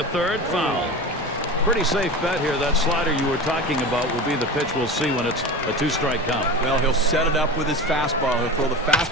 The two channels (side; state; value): both; normal; correlation 0.29